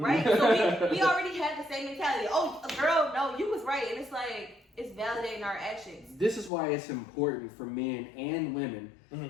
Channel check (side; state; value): right; drops out; at 6.5 s